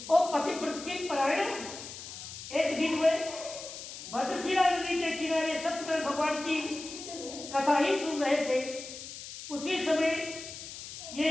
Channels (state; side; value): noise; left; hiss, 11 dB below the sound